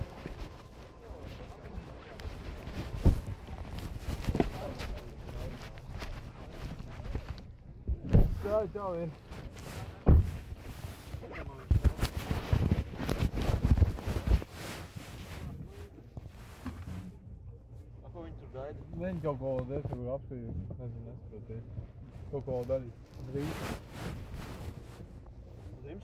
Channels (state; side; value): identical; both; correlation 1.00